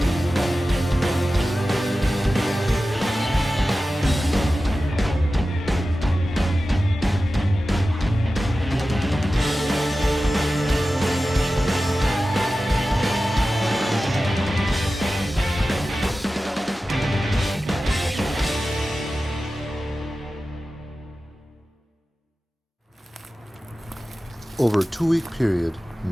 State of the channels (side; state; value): both; normal; correlation 0.94